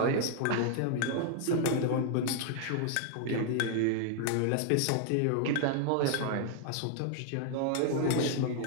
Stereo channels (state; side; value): different; both; correlation 0.00